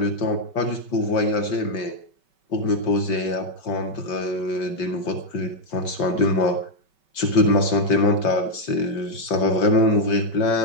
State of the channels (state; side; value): late; right; 5.3 ms